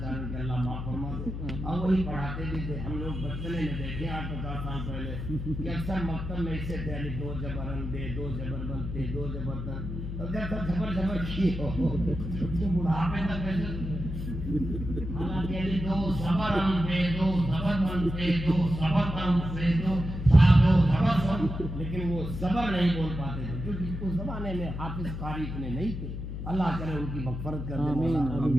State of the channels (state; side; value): noise; left; hum, 6 dB below the sound